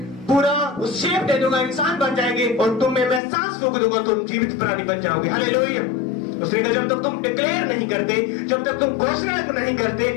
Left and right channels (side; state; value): right; drops out; at 3.2 s